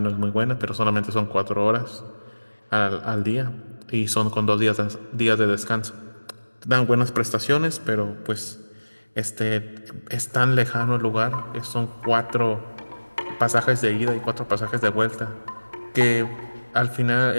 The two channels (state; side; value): inverted; both; correlation -1.00